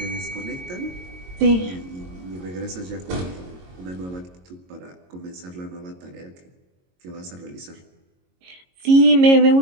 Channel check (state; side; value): late; left; 22 ms